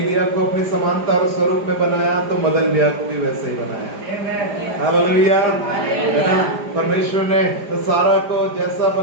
को अपनी समानता और स्वरूप में बनाया तो मदन को भी वैसे ही बनाया। हालेलुया। है ना? परमेश्वर ने सारा को जैसा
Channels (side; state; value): left; late; 4.9 ms